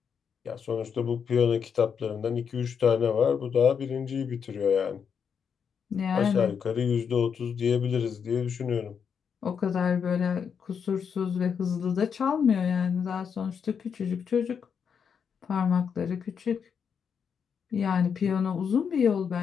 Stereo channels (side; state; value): right; quieter; 6.9 dB